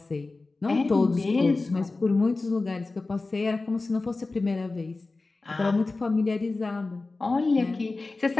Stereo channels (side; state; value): right; quieter; 3.5 dB